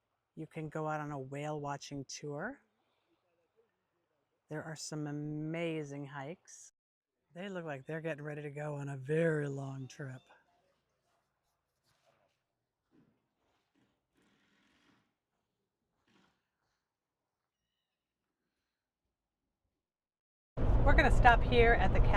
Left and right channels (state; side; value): identical; both; correlation 1.00